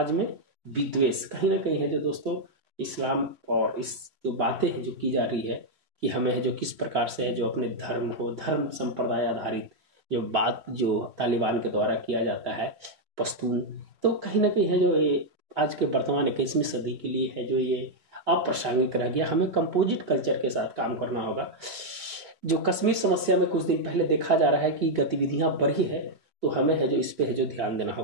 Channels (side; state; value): left; late; 3.3 ms